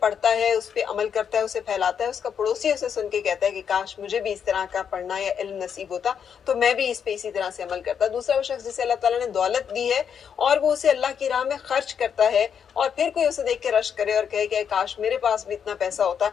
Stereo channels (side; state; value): right; quieter; 7.6 dB